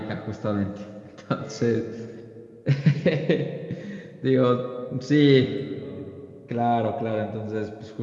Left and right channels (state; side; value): identical; both; correlation 1.00